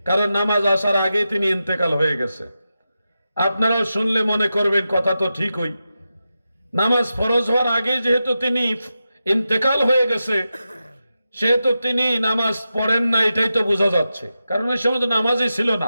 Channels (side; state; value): both; inverted; correlation -0.90